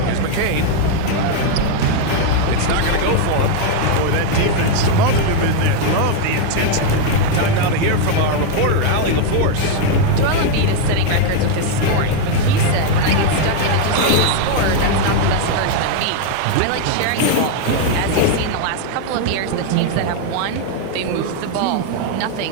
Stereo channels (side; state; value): both; different; correlation 0.00